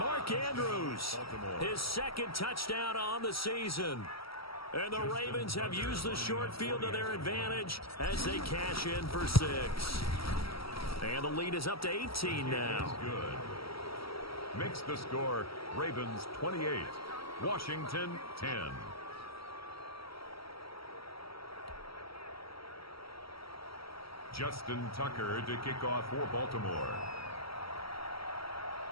Andrews, his second touchdown on the season. And the Ravens have used the short field to their advantage as they cash in for 6. And the lead is up to 18 now. Good. Makes the score Ravens 28, Washington 10. Justin Tucker to kick off for Baltimore.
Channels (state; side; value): late; right; 0.75 ms